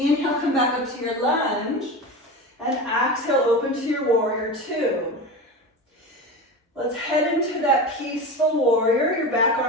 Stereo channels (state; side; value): normal; both; correlation 0.26